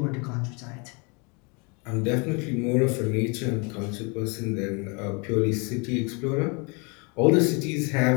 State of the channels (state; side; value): quieter; right; 31.8 dB